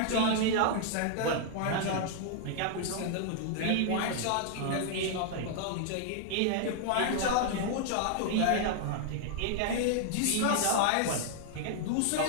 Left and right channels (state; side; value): different; both; correlation 0.00